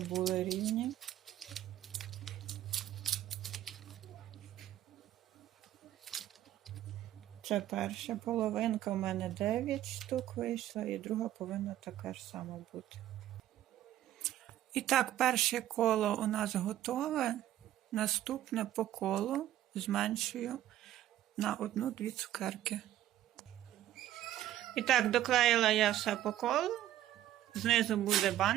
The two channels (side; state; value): left; quieter; 13.1 dB